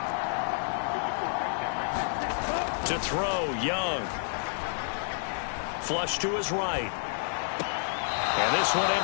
To throw, Young. Flush to his right. And this one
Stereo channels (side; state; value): right; silent; digital silence